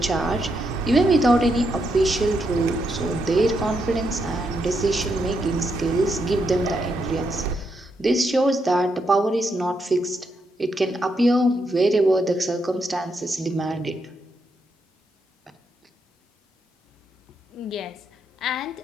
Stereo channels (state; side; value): normal; both; correlation 0.80